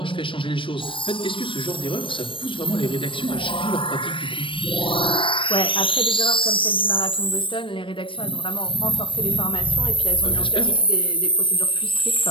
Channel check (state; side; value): late; right; 0.25 ms